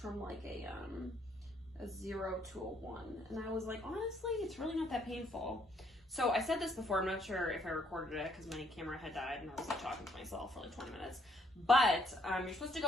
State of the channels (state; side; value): normal; both; correlation 0.69